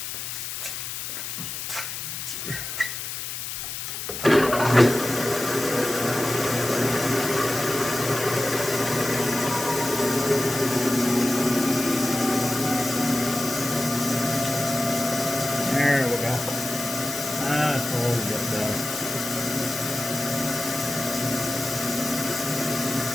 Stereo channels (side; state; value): left; noise; hiss, 6 dB below the sound